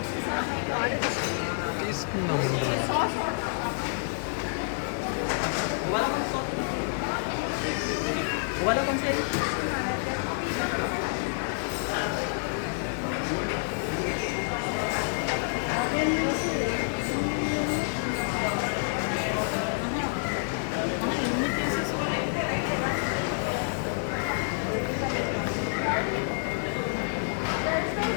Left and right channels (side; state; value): right; silent; digital silence